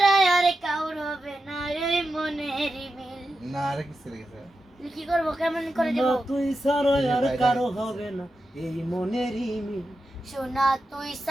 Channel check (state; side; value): normal; both; correlation 0.90